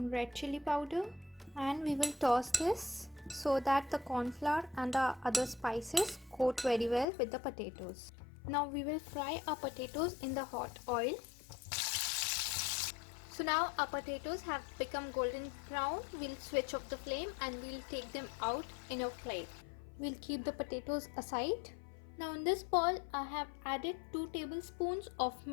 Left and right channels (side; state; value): right; drops out; at 7.1 s